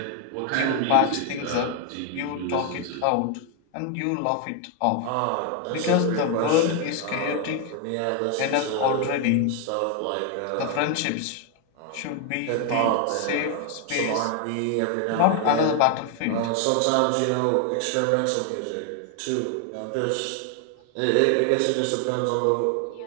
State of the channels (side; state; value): both; different; correlation 0.00